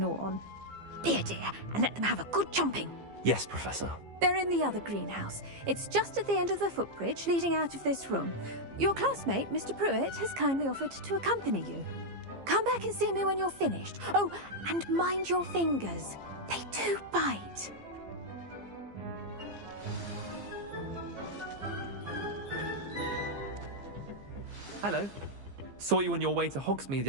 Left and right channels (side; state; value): left; late; 15 ms